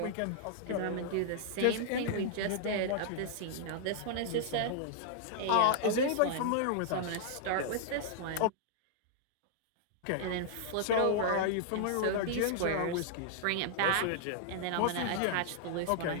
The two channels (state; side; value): different; both; correlation -0.01